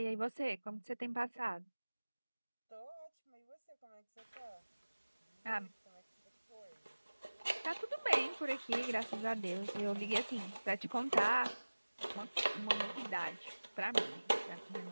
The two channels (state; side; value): inverted; both; correlation -1.00